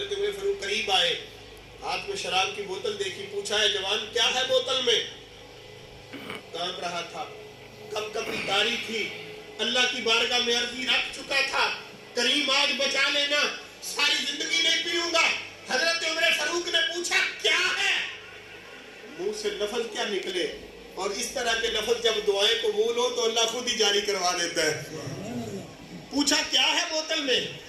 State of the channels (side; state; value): both; identical; correlation 1.00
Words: عمر فاروق قریب آئے، ہاتھ میں شراب کی بوتل دیکھی، پوچھا ہے جوان کیا ہے بوتل میں؟ کانپ رہا تھا، کب کبھی تاری تھی، اللہ کی بارگاہ میں عرضی رکھ چکا تھا، کریم آج بچا لینا، ساری زندگی نہیں پیوں گا۔ حضرت عمر فاروق نے پوچھا کیا ہے؟ منہ سے لفظ کیا نکلے، اور اس طرح کے لفظ جب دعائیں قبول ہو تو اللہ خود ہی جاری کروا دیتا ہے۔ پوچھا کیا ہے بوتل میں؟